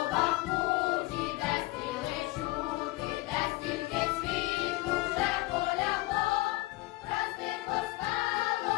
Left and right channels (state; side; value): quieter; right; 20.1 dB